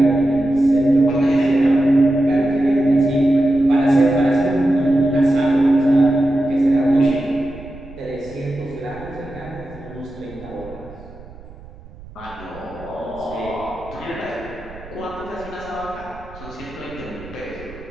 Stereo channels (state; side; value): noise; right; rumble, 19 dB below the sound